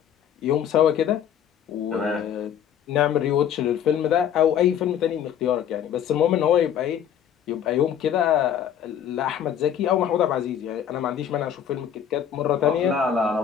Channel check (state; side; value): quieter; right; 9.1 dB